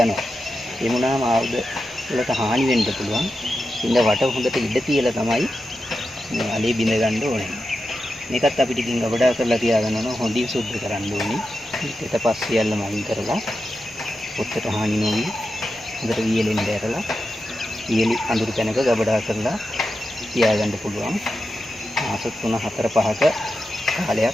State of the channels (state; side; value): normal; both; correlation 0.89